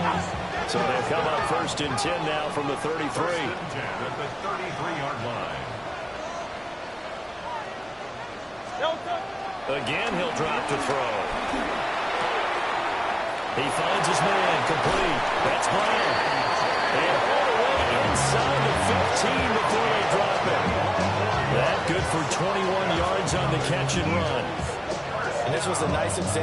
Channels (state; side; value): identical; both; correlation 1.00